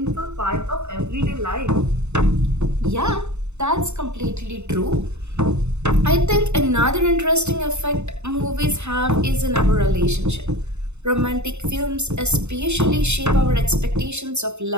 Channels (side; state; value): left; late; 0.82 ms